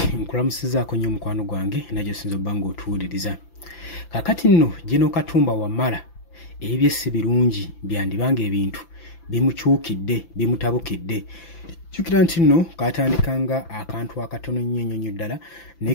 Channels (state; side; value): late; right; 5.9 ms